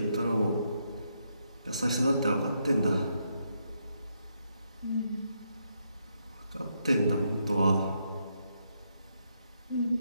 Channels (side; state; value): both; inverted; correlation -0.78